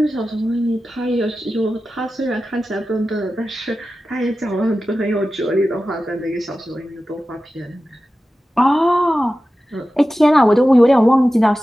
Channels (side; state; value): both; normal; correlation 0.94